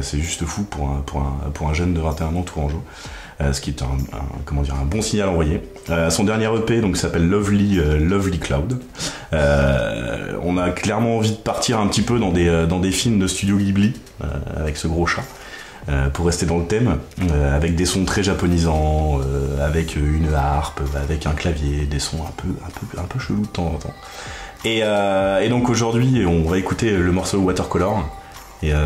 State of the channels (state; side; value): identical; both; correlation 1.00